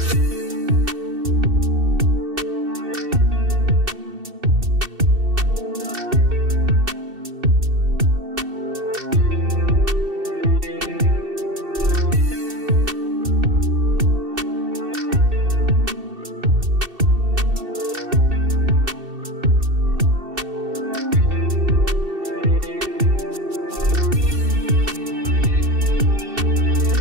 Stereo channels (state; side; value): late; left; 2.7 ms